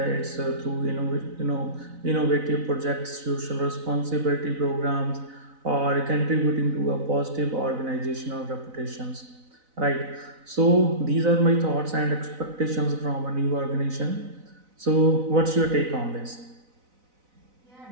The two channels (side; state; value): left; late; 4.0 ms